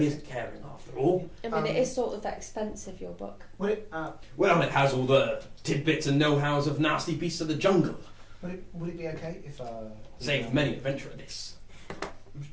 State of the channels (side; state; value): both; identical; correlation 1.00